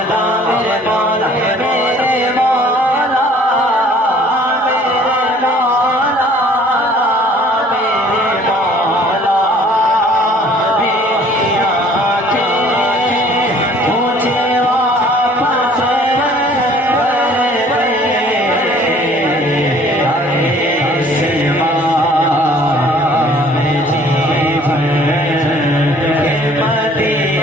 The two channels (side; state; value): both; normal; correlation 0.55